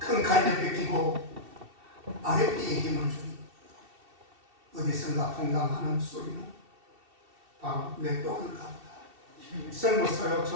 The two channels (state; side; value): late; left; 2.7 ms